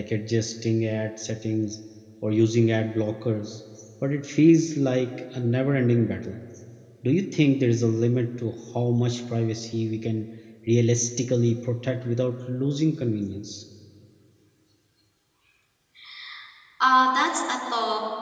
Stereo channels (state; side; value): identical; both; correlation 1.00